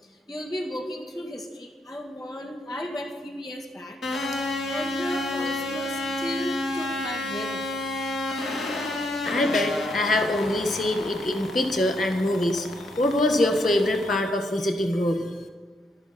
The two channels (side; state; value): both; normal; correlation 0.76